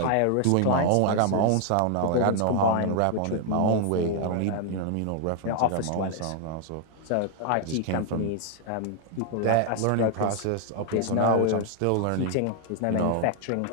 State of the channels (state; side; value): different; both; correlation 0.00